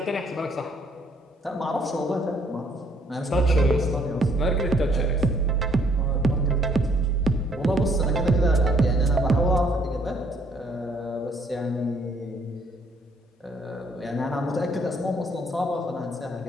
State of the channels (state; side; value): normal; both; correlation 0.65